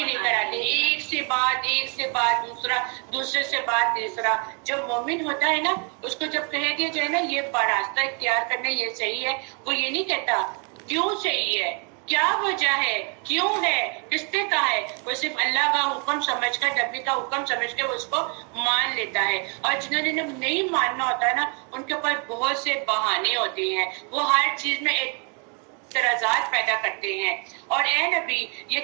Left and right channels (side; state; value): left; quieter; 36.7 dB